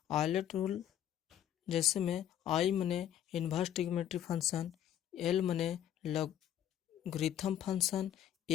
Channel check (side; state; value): right; quieter; 10.8 dB